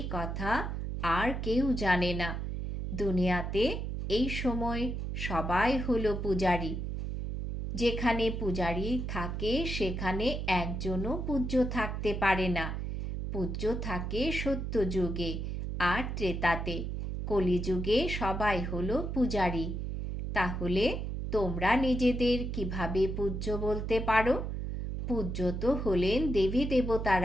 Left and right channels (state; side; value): noise; right; hum, 4 dB below the sound